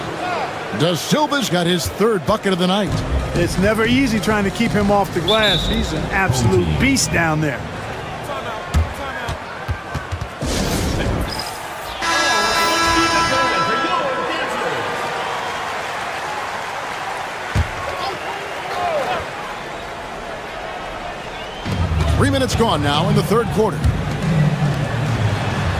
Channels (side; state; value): both; identical; correlation 1.00